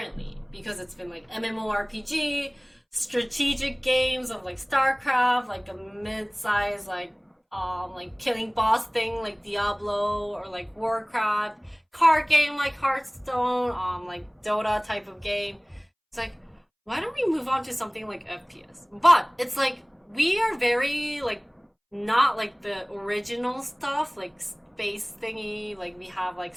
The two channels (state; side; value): identical; both; correlation 1.00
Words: because it's been like MMORPG, strategic games of like StarCraft, like a mid-size like killing boss thing like Diablo or like Warcraft, card game like Hearthstone, like Dota type of game. It's like, why don't we move on to something like FPS? But it's like we are very like not like the original stuff like space thingy, like we have like